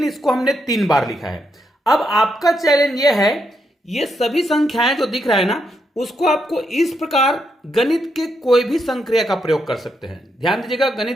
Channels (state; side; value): normal; both; correlation 0.80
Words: इसको हमने 3 बार लिखा है। अब आपका चैलेंज ये है, ये सभी संख्याएं जो दिख रहा है ना, उसको आपको इस प्रकार गणित के कोई भी संक्रिया का प्रयोग कर सकते हैं। ध्यान दीजिएगा,